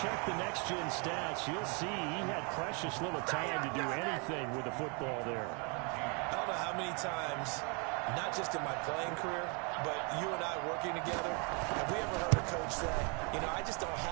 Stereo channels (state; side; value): quieter; left; 34.0 dB